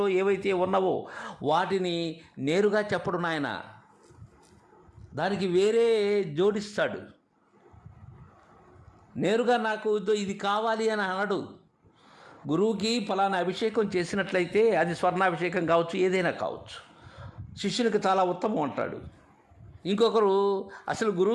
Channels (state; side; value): identical; both; correlation 1.00